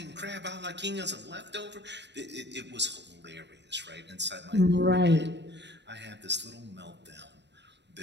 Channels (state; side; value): late; left; 0.51 ms